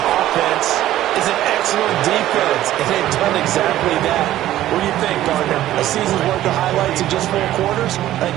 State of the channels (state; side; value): quieter; left; 13.8 dB